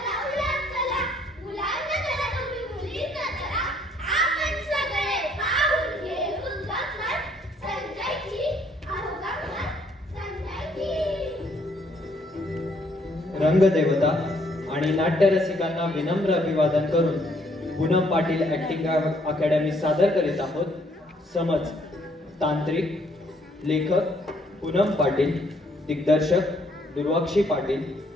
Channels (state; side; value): normal; both; correlation 0.67